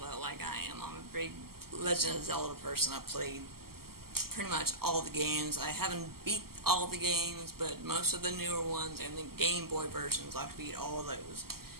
like I am, I'm a big Legend of Zelda person. I've played pretty much all the games. I haven't beat all the games, but most of the newer ones and the Game Boy versions, I've beat all of those.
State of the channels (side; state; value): left; late; 0.94 ms